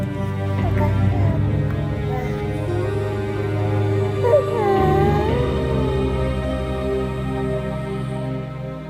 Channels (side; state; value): both; identical; correlation 1.00